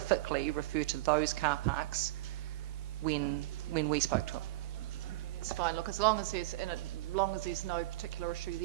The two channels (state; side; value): quieter; left; 18.4 dB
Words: refer to those car parks when we spoke to him. It's fine. Look, as long as there's no particular issue